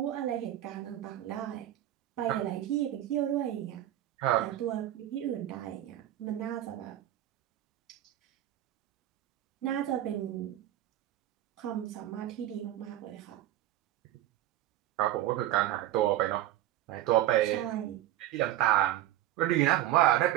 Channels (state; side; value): quieter; left; 13.4 dB